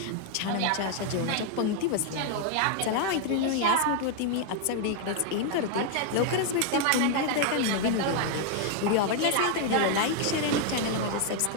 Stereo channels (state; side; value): different; both; correlation 0.00